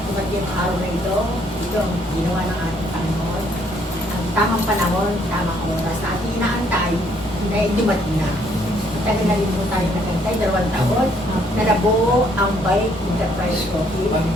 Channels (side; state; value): both; normal; correlation 0.67